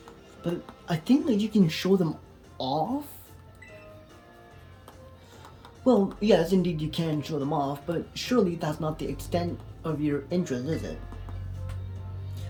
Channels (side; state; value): both; identical; correlation 1.00